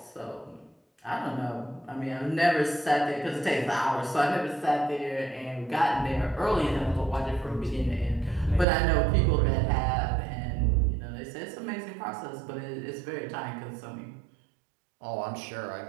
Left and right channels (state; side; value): drops out; left; at 8.7 s